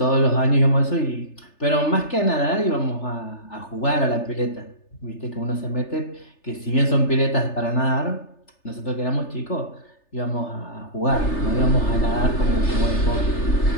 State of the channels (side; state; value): right; late; 3.3 ms